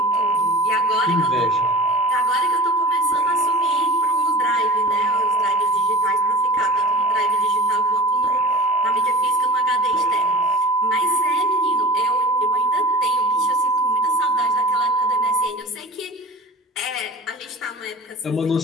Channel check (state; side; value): normal; both; correlation 0.37